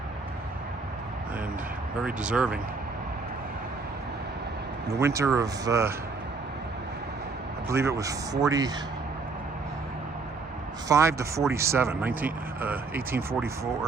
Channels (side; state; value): left; quieter; 4.2 dB